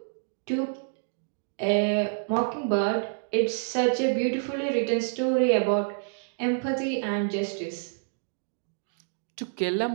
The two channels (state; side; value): silent; left; digital silence